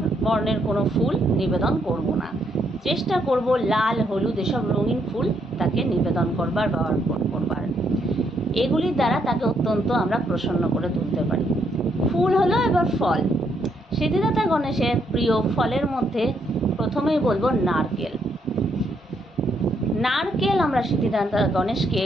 বর্ণের কোনো ফুল নিবেদন করব না, চেষ্টা করব লাল হলুদ এসব রঙিন ফুল তাকে নিবেদন করবার বা অর্পণ করবার। এগুলির দ্বারা তাকে অত্যন্ত আমরা প্রসন্ন করে তুলতে পারি। ফুল হলো এবার ফল। সিদ্ধিদাতা গণেশের প্রিয় ফলের মধ্যে প্রথমেই বলবো নারকেল। নারকেল আমরা সিদ্ধিদাতা গণেশকে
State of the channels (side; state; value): both; normal; correlation 0.74